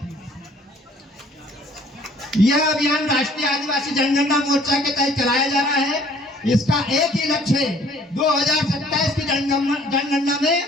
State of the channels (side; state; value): both; normal; correlation 0.56